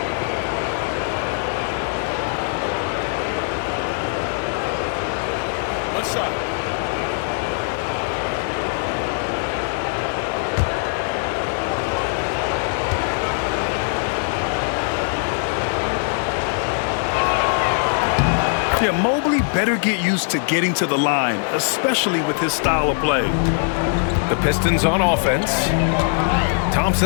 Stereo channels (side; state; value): right; silent; 61 dB below the other